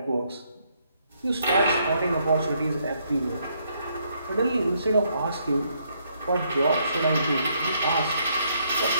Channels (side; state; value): both; inverted; correlation -0.72